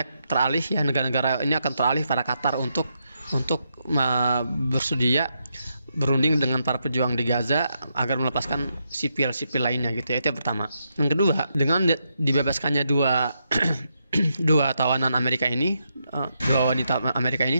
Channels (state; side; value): inverted; both; correlation -0.82